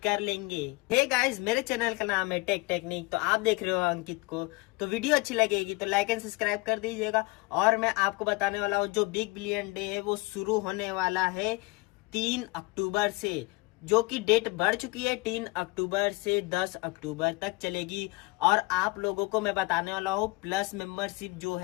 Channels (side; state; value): right; quieter; 24.3 dB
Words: कर लेंगे। हे गाइस, मेरे चैनल का नाम है टेक टेक्निक, तो आप देख रहे हो अंकित को। तो वीडियो अच्छी लगेगी तो लाइक एंड सब्सक्राइब कर दीजिएगा। और मैं आपको बताने वाला हूँ जो बिग बिलियन डे है वो शुरू होने वाला है 3 अक्टूबर से, जो कि डेट बढ़ चुकी है। 3 अक्टूबर से 10 अक्टूबर तक चलेगी। और आप लोगों को मैं बताने वाला हूँ प्लस मेंबरशिप जो